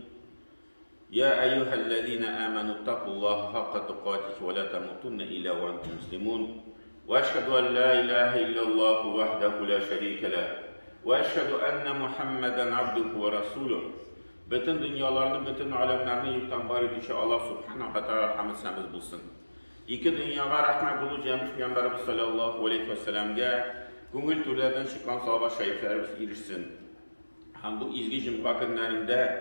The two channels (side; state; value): both; inverted; correlation -1.00